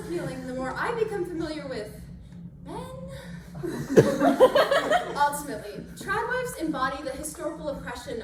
the more I become familiar with men. Ultimately, trad wives embody the historical oppression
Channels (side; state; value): both; identical; correlation 1.00